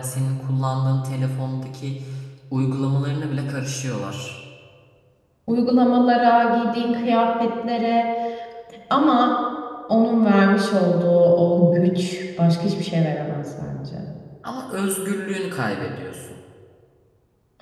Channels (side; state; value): both; identical; correlation 1.00